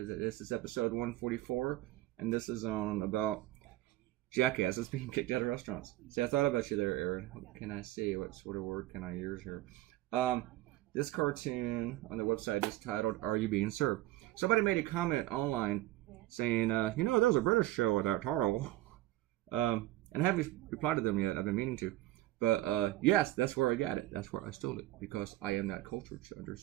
is episode 144, and this is on about jackasses being kicked out of restaurants. See, I thought about you there, Aaron. What can I say? What sort of word can I use here? This cartoon on their website is titled, Are You Being Served? Somebody made a comment online saying, there's a British show with that title. And I haven't replied to them yet. I've been meaning to. But yes, that's where I got it. That's where I stole it. Because I am that cultured to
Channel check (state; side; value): quieter; left; 16.7 dB